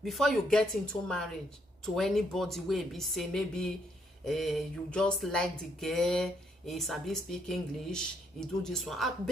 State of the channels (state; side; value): normal; both; correlation 0.73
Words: before you get into marriage to anybody where be say maybe you just like the girl, he sabi speak English, he do this one. I